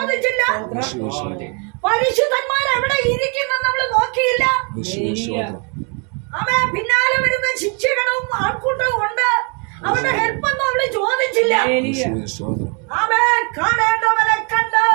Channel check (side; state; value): left; quieter; 36.2 dB